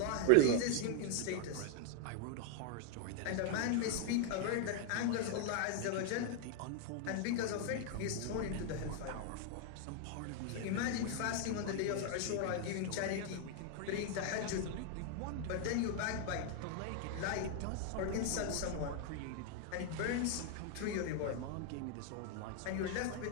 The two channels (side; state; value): both; different; correlation 0.00